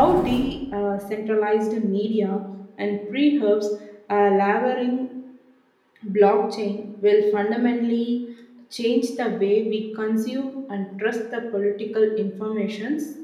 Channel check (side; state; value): both; identical; correlation 1.00